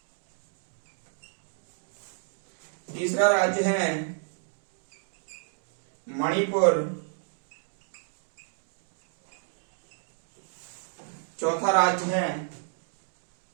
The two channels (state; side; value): silent; left; 57 dB below the other